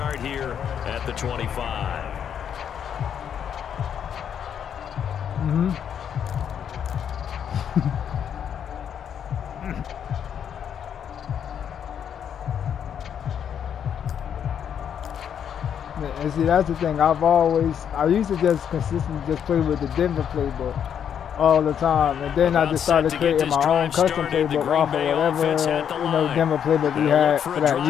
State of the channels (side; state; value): right; quieter; 8.5 dB